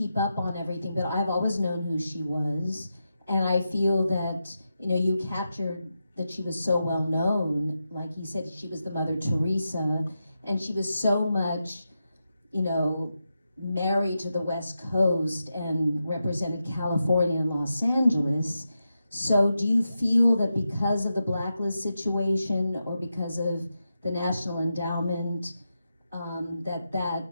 up on everything, but I've always known who she was. And I feel that, you know, you captured that she was so well known. Like he said, she was the Mother Teresa, and she was so much, you know, married to the West Coast and represented California and Los Angeles. So do you feel that because of the blacklist situation or because of the National Endowment, that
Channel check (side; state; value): both; inverted; correlation -0.88